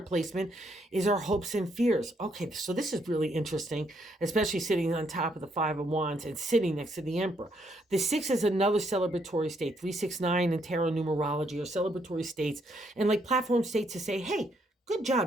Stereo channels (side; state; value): both; normal; correlation 0.73